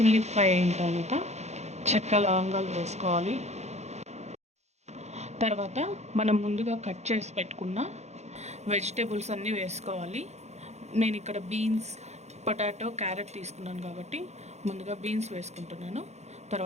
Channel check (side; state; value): left; late; 0.32 ms